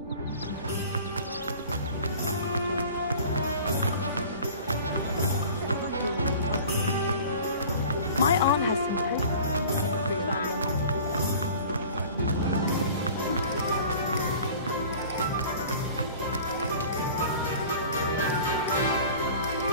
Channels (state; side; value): inverted; both; correlation -0.43